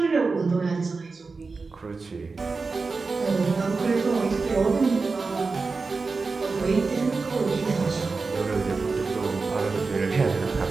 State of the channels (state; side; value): quieter; left; 4.2 dB